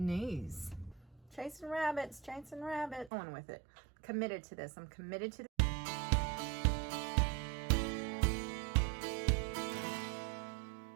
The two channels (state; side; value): drops out; left; at 3.1 s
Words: Chasing rabbits, chasing rabbits. Going with it. Committed to this. I'm committed to this.